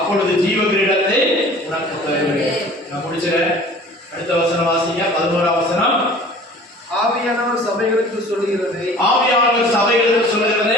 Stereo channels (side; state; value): both; normal; correlation 0.46